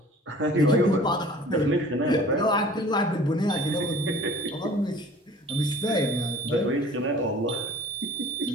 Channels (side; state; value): both; normal; correlation 0.47